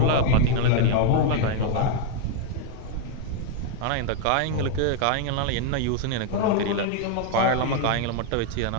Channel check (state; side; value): different; both; correlation 0.00